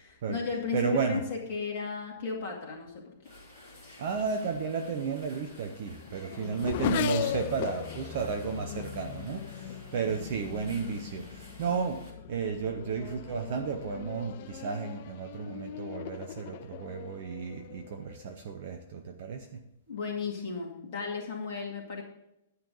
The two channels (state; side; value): inverted; both; correlation -0.44